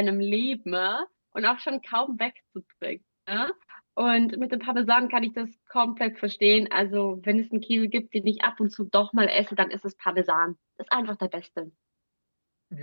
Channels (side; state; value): both; inverted; correlation -1.00